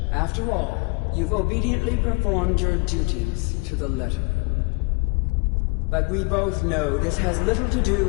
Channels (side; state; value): right; quieter; 30.7 dB